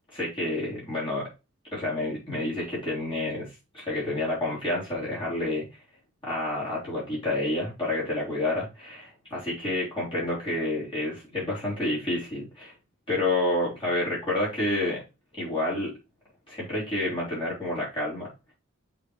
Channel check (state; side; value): normal; both; correlation 0.18